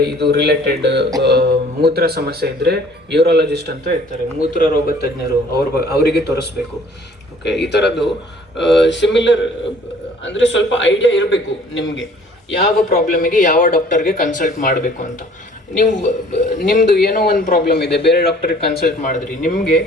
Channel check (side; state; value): both; normal; correlation 0.54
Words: ಇದು ರಿಲೇಟೆಡ್ ಮೂತ್ರ ಸಮಸ್ಯೆ ಇದ್ದರೆ ಯೂರಾಲಜಿಸ್ಟ್ ಅಂತ ಇರ್ತಾರೆ, ಮೂತ್ರ ರೋಗ ತಜ್ಞರು, ಅವರಿಗೆ ತೋರಿಸ್ಬೇಕು. ಓಕೆ, ಈ ಥರದ್ದು ಸಿಮಿಲರ್ ಅಂದರೆ ಸ್ವಲ್ಪ ಐಡಿಯಾ ಇರಬೇಕು ನಿಮಗೆ ಯಾವ ಪ್ರಾಬ್ಲಮಿಗೆ ಯಾವ ಡಾಕ್ಟರ್ಗೆ ಕನ್ಸಲ್ಟ್ ಮಾಡಬೇಕು ಅಂತ. ನಿಮ್ಮದು ಏನೋ ಒಂದು ಪ್ರಾಬ್ಲಮ್ ಇದೆ, ಬೇರೆ ಡಾಕ್ಟರ್ಗೆ ಕನ್ಸಲ್ಟ್ ಮಾಡಿದ್ರಿ, ನಿಮಗೆ